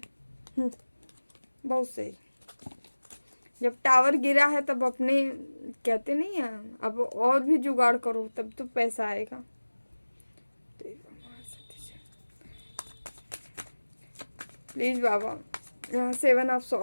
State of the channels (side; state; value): both; inverted; correlation -1.00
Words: बहुत सही। जब टावर गिरा है तब अपने, कहते नहीं है, अब और भी जुगाड़ करो तब तो पैसा आएगा। प्लीज बाबा, यहाँ 7 ऑफ